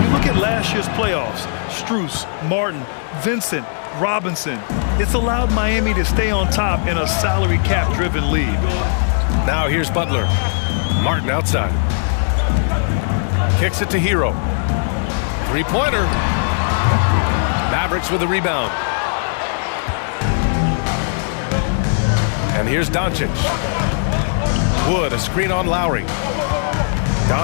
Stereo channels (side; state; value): right; silent; digital silence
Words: look at last year's playoffs. Strus, Martin, Vincent, Robinson. It's allowed Miami to stay on top in a salary cap-driven league. Now here's Butler. Martin outside. Kicks it to Hero. Three-pointer. Mavericks with the rebound. And here's Doncic. Wood, a screen on Lowry.